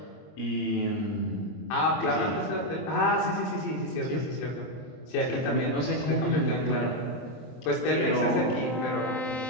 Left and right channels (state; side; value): late; right; 23 ms